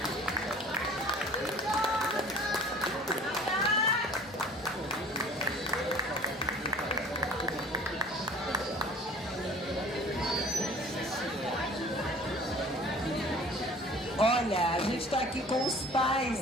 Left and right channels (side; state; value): both; normal; correlation 0.47